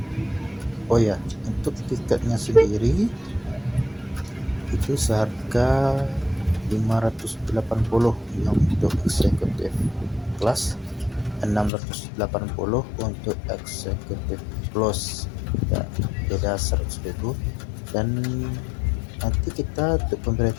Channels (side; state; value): right; drops out; at 11.7 s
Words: ya, untuk tiketnya sendiri itu seharga 580 yang untuk eksekutif kelas, 680 untuk eksekutif plus ya, beda 100.000. Dan nanti kita untuk